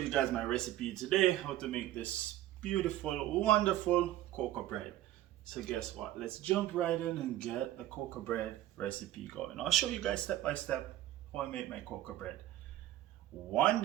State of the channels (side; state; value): left; quieter; 14.2 dB